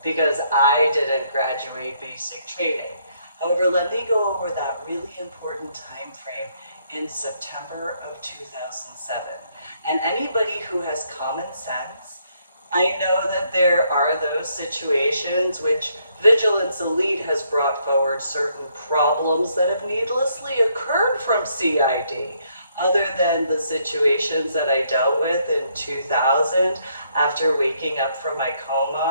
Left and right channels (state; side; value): inverted; both; correlation -0.71